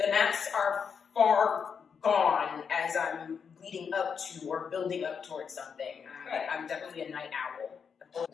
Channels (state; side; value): quieter; right; 6.5 dB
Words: are far gone as I'm leading up to or building up towards something. I'm definitely a night owl. I've